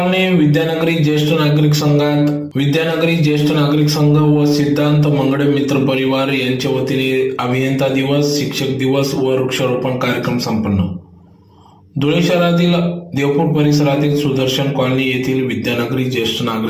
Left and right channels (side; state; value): both; identical; correlation 1.00